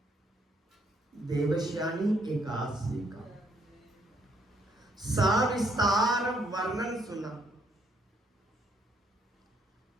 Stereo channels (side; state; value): both; normal; correlation 0.70